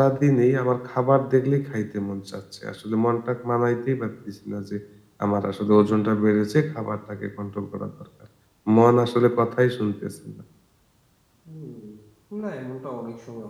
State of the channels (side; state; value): both; identical; correlation 1.00